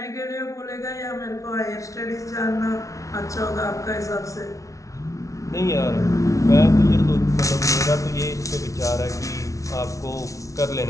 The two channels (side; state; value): right; late; 0.16 ms